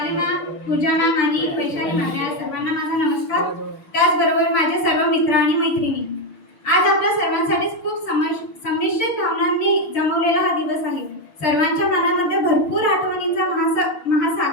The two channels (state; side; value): late; right; 6.6 ms